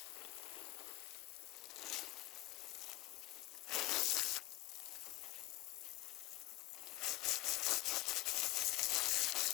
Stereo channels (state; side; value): quieter; right; 16.9 dB